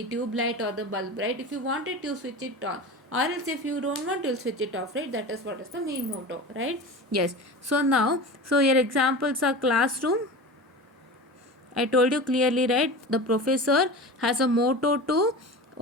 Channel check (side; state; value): both; normal; correlation 0.31